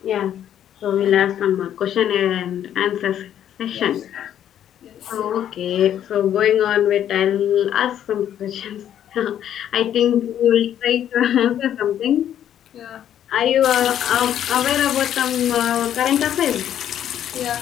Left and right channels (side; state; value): right; quieter; 10.4 dB